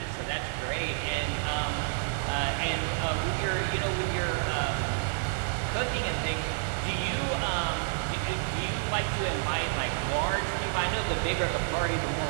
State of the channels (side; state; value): left; silent; digital silence